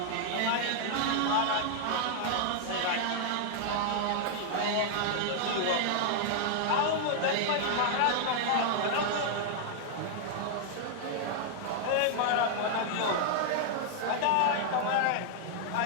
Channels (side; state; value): both; different; correlation 0.00